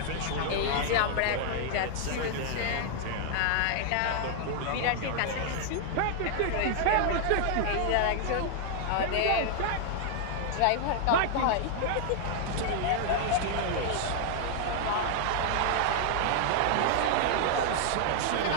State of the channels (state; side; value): different; both; correlation 0.00